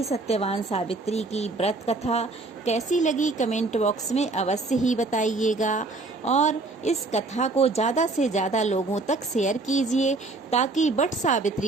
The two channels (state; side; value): quieter; left; 3.4 dB